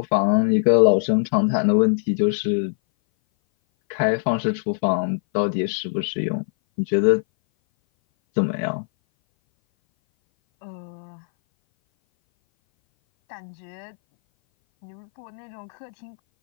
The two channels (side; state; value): right; silent; 59 dB below the other